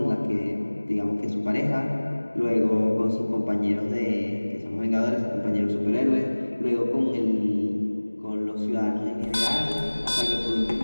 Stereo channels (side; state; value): both; inverted; correlation -1.00